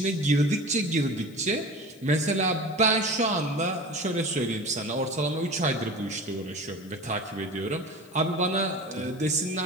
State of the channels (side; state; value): left; noise; hiss, 27 dB below the sound